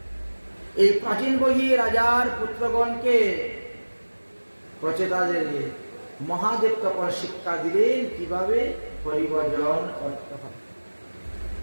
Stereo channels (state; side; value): inverted; both; correlation -1.00